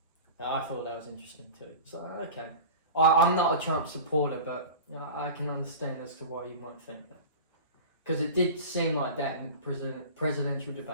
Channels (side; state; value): both; inverted; correlation -0.34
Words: I thought that was interesting too. So, okay. I'm not a Trump supporter, but I can understand as to why you might think that. Because it did seem like that in presidential